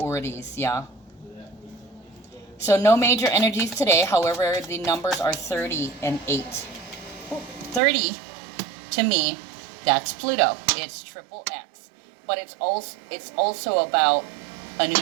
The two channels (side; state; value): left; drops out; at 7.8 s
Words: yeah? So no major energies today. However, the numbers are 30 and 8. 30, to me, that's Pluto. It's triple X. But it's also about a new